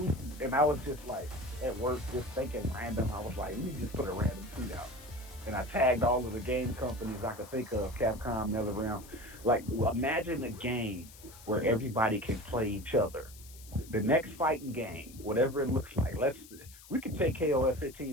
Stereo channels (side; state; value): left; noise; hiss, 19 dB below the sound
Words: and I was just like at work, just thinking random. I was like, let me just put a random tweet out, and I tagged all of the game companies I could think of, Capcom, NetherRealm. Like, imagine a game where everybody can play each other. The next fighting game, whatever it looks like. We could take KOF